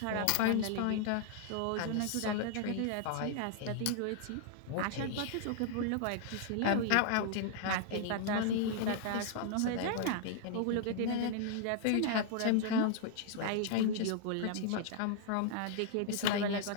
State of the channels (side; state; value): both; different; correlation 0.00